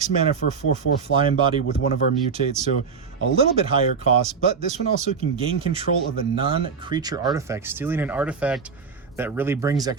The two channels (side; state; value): left; quieter; 5.7 dB